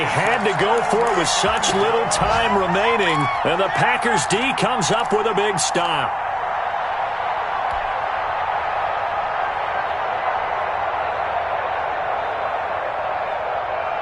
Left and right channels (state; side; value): identical; both; correlation 1.00